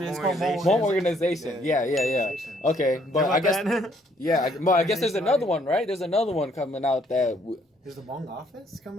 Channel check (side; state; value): both; normal; correlation 0.66